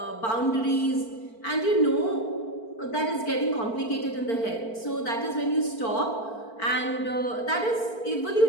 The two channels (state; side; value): late; right; 4.5 ms